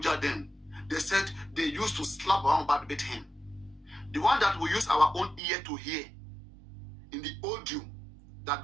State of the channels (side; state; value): left; drops out; at 5.4 s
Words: then, they said they used to slap Baba Mohbad with him. The one that we use our own ear to hear in the audio that